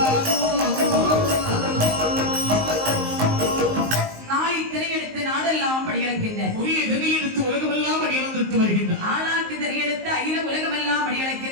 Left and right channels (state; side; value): late; left; 19 ms